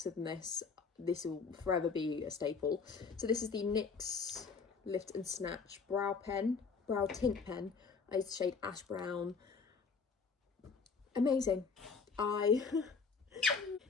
than this, this will forever be a staple. So this is the NYX Lift and Snatch Brow Tint Pen. I use the shade Ash Brown. Amazing.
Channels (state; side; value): quieter; right; 5.1 dB